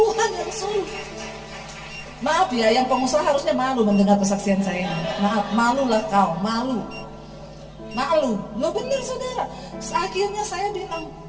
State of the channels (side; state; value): both; identical; correlation 1.00